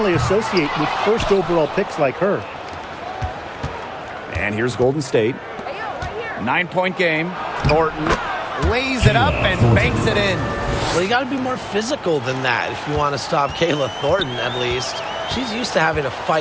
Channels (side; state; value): both; identical; correlation 1.00